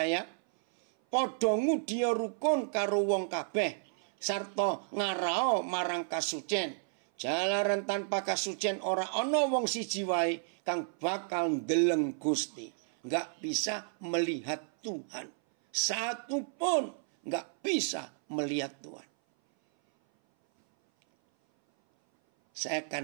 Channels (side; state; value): left; silent; 57 dB below the other